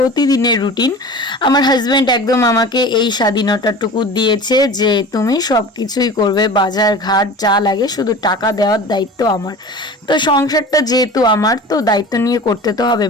রুটিন। আমার হাজব্যান্ড একদম আমাকে এই স্বাধীনতাটুকু দিয়েছে যে তুমি সব কিছুই করবে, বাজার ঘাট যা লাগে, শুধু টাকা দেওয়ার দায়িত্ব আমার। তো সংসারটা যেহেতু আমার, তো দায়িত্ব নিয়ে করতে তো হবে।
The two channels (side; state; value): both; normal; correlation 0.37